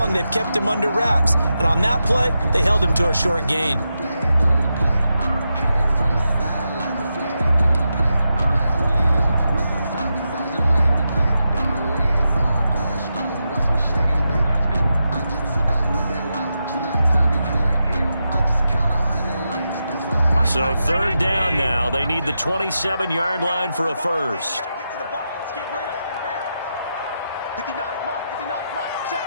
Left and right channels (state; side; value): inverted; both; correlation -0.87